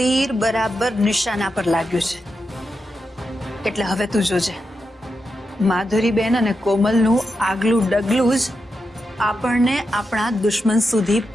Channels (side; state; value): both; normal; correlation 0.87